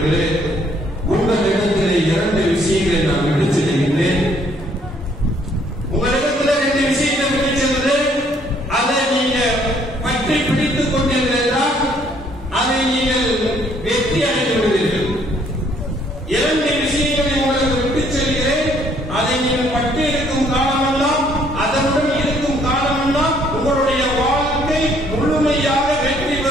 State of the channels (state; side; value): normal; both; correlation 0.64